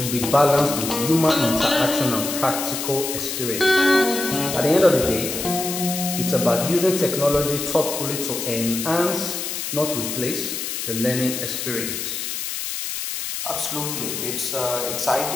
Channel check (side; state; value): left; noise; hiss, 4 dB below the sound